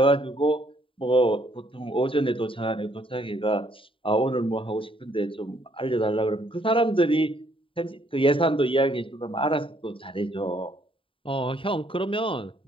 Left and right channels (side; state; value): right; late; 0.25 ms